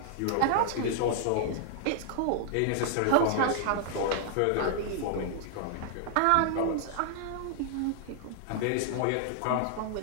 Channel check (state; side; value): different; both; correlation -0.01